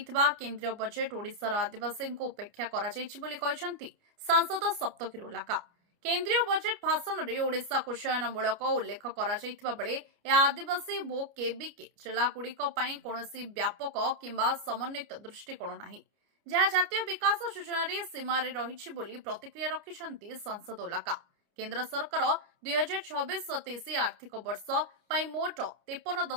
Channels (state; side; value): late; left; 29 ms